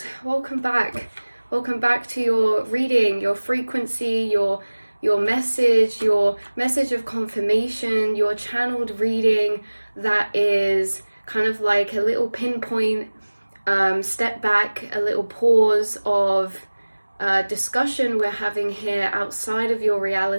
welcome back. Welcome back to your reading, your frequency, your message of confirmation, your channeled reading that is kind of like a little pinpoint step back, a little pause of discussion we're having here outside of your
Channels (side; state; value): both; inverted; correlation -1.00